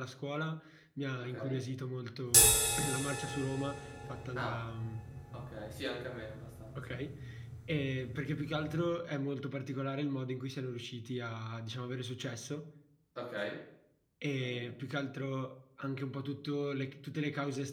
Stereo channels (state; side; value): identical; both; correlation 1.00